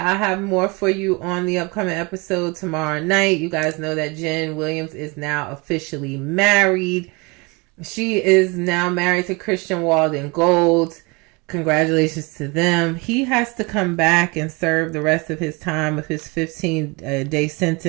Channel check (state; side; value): quieter; left; 27.6 dB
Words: I have more for you on the upcoming episode tomorrow night. You guys know that Jen Williams is now officially married. She is now married to Christian Walden Gold. Congratulations to them. He has to come back and serve the rest of his time of his 15-day